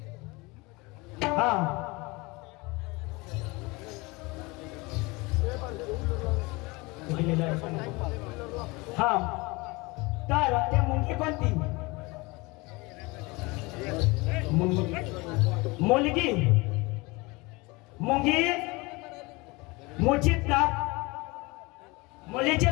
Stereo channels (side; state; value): right; quieter; 24.7 dB